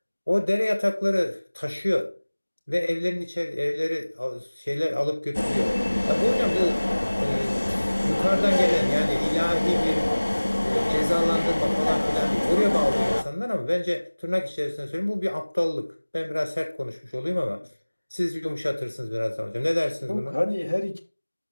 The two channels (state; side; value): inverted; both; correlation -1.00